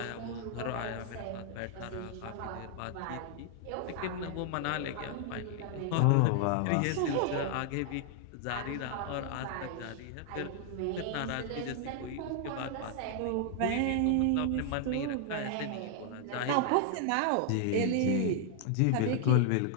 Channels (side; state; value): both; different; correlation 0.00